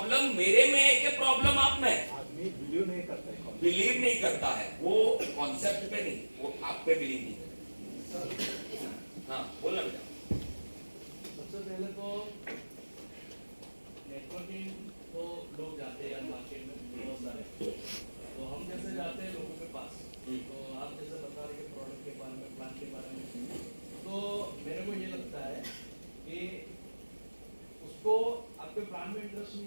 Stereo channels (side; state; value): both; inverted; correlation -1.00